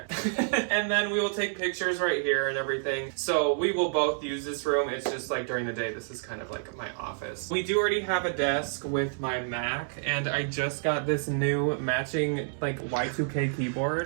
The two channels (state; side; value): silent; left; digital silence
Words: And then we will take pictures right here and everything. So we will both use this room. It's just like during the day, this is kind of like my office. We do already have a desk with my Mac, and I just got this new matching like Y2K keyboard.